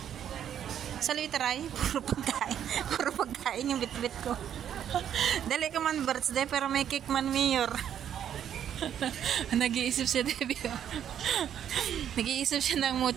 Sa try, puro pagkain. Puro pagkain yung bit-bit ko. Dali ka man birthday, pero may cake man, mayor. Nag-iisip siya, Debbie. Nag-iisip siya ng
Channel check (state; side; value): quieter; left; 9.6 dB